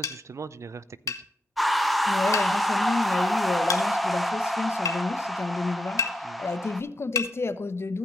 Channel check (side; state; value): both; normal; correlation 0.82